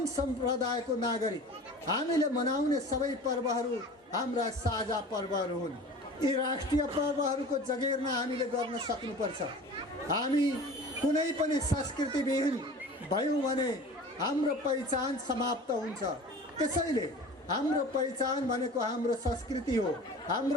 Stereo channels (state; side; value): normal; both; correlation 0.39